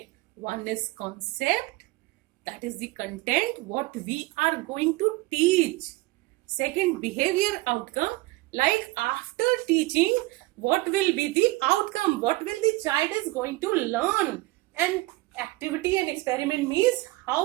One is concept, that is the content, what we are going to teach. Second, behavior outcome, like after teaching, what will be the outcome, what will the child is going to learn. And activity and experiment means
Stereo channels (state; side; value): quieter; left; 21.2 dB